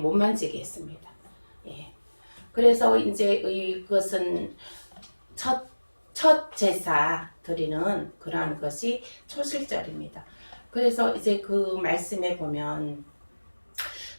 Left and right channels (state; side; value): inverted; both; correlation -1.00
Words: 만지게 했습니다. 그래서 이제 이것은 첫 제사 드리는 그러한 것이 초실절입니다. 그래서 이제 그 말씀에 보면